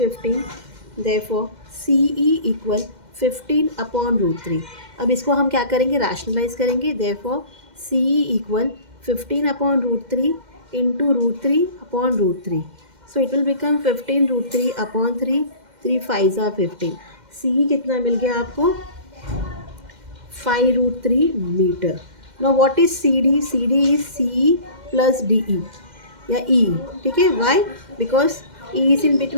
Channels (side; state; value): left; late; 2.1 ms